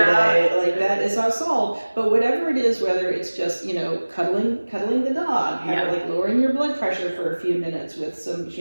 Like that is not solved. But whatever it is, whether it's just, cuddling the dog, like lowering your blood pressure for a few minutes with some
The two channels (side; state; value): both; inverted; correlation -1.00